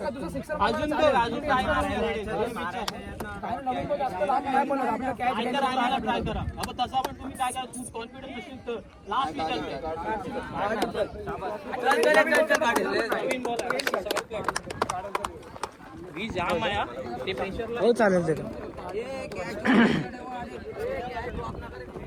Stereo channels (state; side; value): identical; both; correlation 1.00